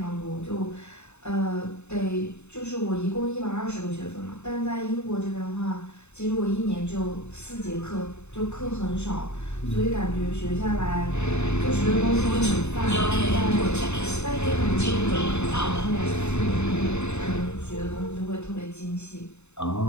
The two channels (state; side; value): late; right; 0.82 ms